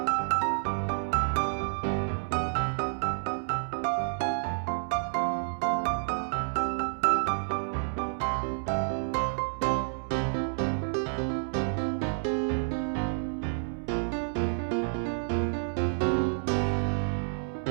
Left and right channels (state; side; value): silent; left; 58 dB below the other